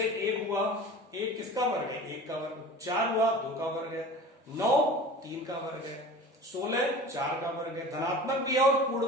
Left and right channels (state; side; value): normal; both; correlation 0.38